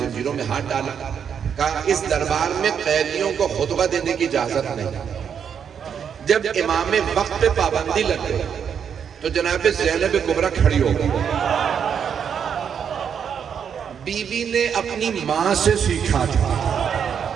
میں ہاتھ ڈالا, کہا اس دربار میں قیدیوں کو خطبہ دینے کی اجازت نہیں. جب امام وقت پہ پابندی لگ گئی تو جناب زینب کبریٰ کھڑی ہو گئی. بی بی نے اپنی ماں سے سیکھا تھا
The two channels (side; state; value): left; quieter; 7.6 dB